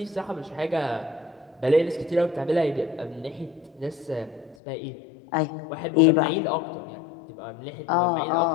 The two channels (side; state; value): right; drops out; at 4.5 s